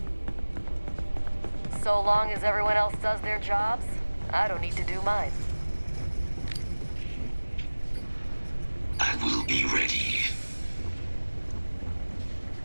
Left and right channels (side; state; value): both; inverted; correlation -1.00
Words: So long as everyone else does their jobs, I don't need to do mine. I will be ready.